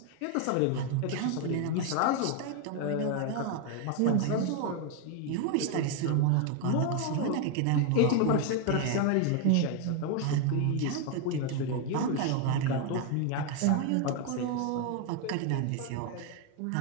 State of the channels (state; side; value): different; both; correlation 0.01